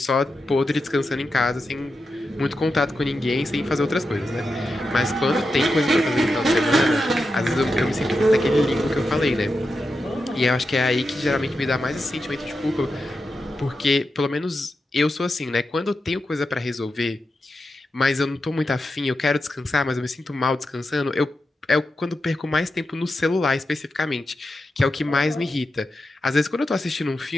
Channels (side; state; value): both; normal; correlation 0.89